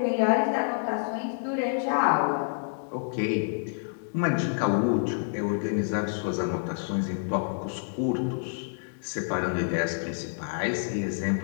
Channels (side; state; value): right; silent; digital silence